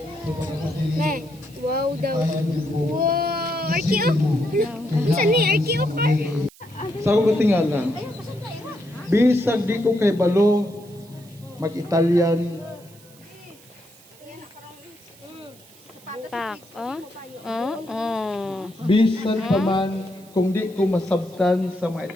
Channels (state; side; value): noise; right; hiss, 25 dB below the sound